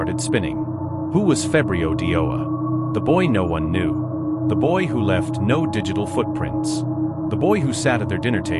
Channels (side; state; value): both; identical; correlation 1.00